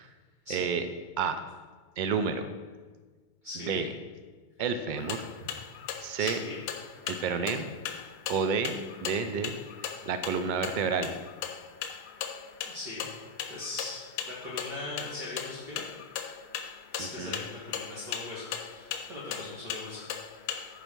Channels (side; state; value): right; late; 2.2 ms